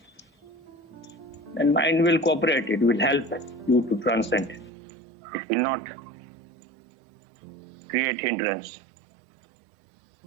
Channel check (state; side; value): drops out; left; at 4.7 s